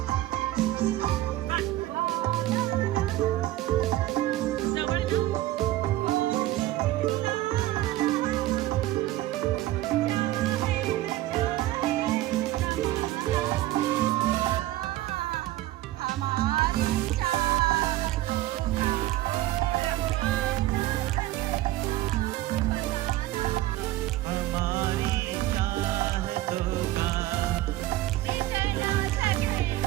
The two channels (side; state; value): left; quieter; 15.8 dB